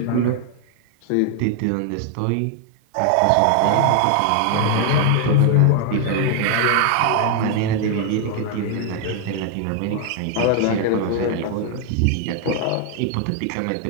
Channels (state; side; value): different; both; correlation 0.00